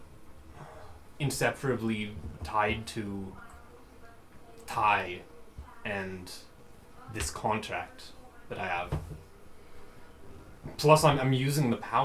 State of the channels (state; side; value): identical; both; correlation 1.00